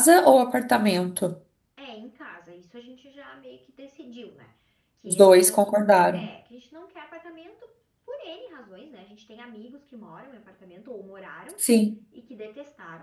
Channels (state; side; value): identical; both; correlation 1.00